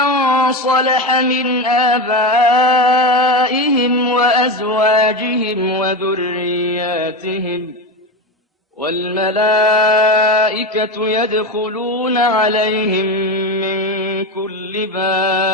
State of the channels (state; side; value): normal; both; correlation 0.19